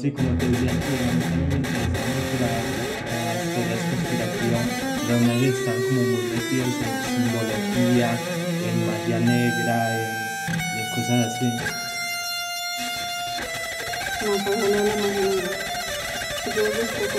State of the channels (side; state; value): both; identical; correlation 1.00